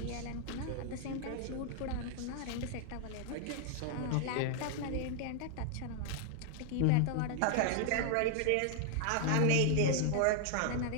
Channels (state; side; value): different; both; correlation 0.00